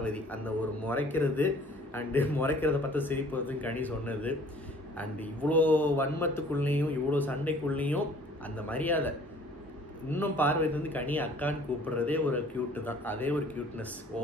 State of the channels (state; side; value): normal; both; correlation 0.53